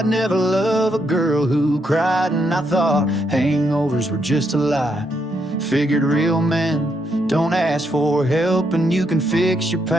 never love a girl who cried, and I thought hangovers were just a lie. Figured real men don't ask for help, and you can fix your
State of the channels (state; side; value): normal; both; correlation 0.78